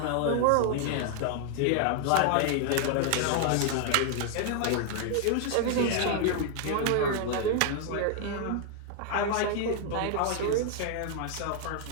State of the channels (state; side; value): different; both; correlation 0.00